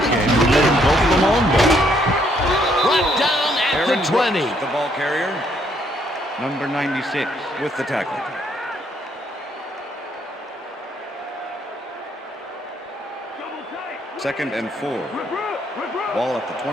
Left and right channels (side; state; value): both; normal; correlation 0.70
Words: game and let him go for the long ball. Brought down at the 20. The ball carrier, number 96, with the tackle. Second and 4. Ball at the